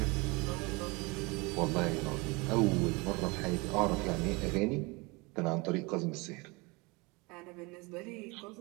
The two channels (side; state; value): left; quieter; 26.6 dB